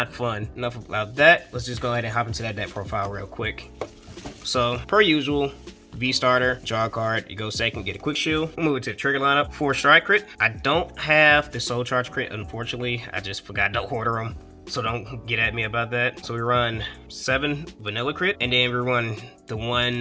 fun? Enough about that. Let's just go ahead and hop into that deck profile real quick. So, per usual, V starter, draw a card, you go second, get a quick shield. We'll move it to the trigger lineup. 4 strike crit. I don't have the soul charge crit, unfortunately. I just forgot to order them, so don't get at me about that. So we run 7 vanilla crit, and then we run the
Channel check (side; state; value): both; identical; correlation 1.00